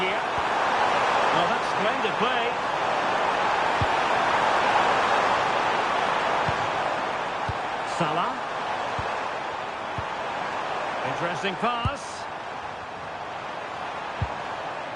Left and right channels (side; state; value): both; identical; correlation 1.00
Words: Well, that's splendid play. Salah. Interesting pass.